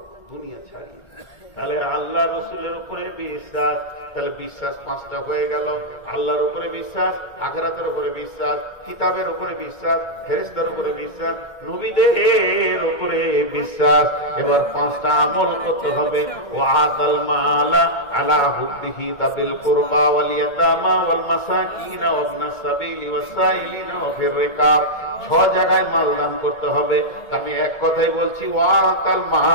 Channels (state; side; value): late; right; 2.2 ms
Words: দুনিয়া ছাড়িয়ে। তাহলে আল্লাহ রসুলের উপরে বিশ্বাস, তাহলে বিশ্বাস 5টা হয়ে গেল। আল্লাহর উপরে বিশ্বাস, আখিরাতের উপরে বিশ্বাস, কিতাবের উপরে বিশ্বাস, ফেরেশতার উপরে বিশ্বাস, নবীদের উপরে বিশ্বাস। এবার 5টা আমল করতে হবে। ওয়া আতাল মালা আলা হুব্বিহি তাবিল কুরবা ওয়াল ইয়াতামা ওয়াল মাসাকিন ওয়া ইবনাস সাবিলি ওয়াস সাইলিন ওয়া ফির রিকাব। 6 জায়গায় মাল দান করতে হবে। আমি এক কথাই বলছি, ওয়া আতাল